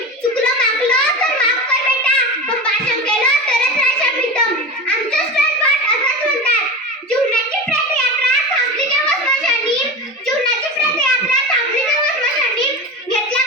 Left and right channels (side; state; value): both; normal; correlation 0.27